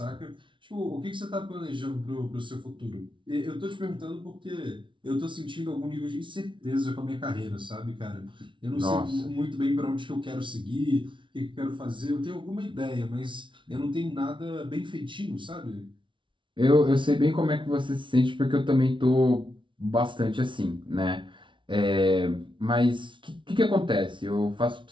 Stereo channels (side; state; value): left; late; 0.24 ms